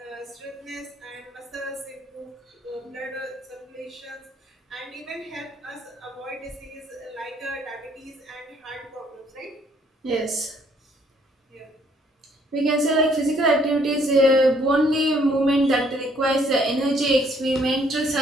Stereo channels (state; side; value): normal; both; correlation 0.65